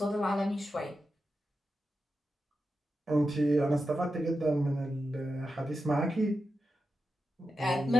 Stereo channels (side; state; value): both; normal; correlation 0.89